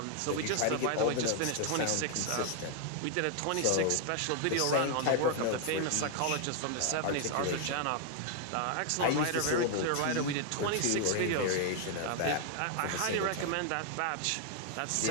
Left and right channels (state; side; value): different; both; correlation 0.00